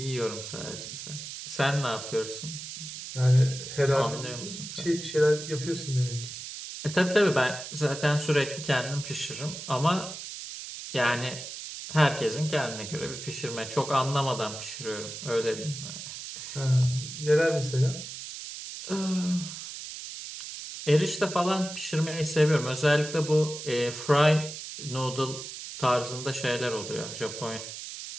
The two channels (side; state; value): right; noise; hiss, 9 dB below the sound